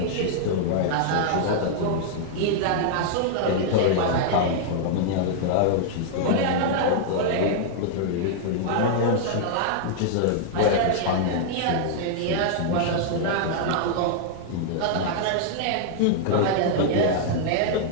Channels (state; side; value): different; both; correlation -0.01